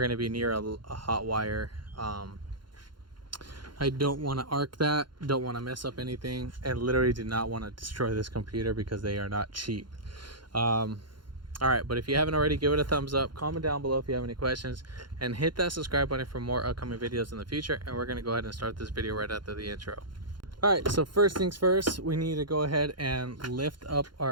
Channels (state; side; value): late; left; 0.72 ms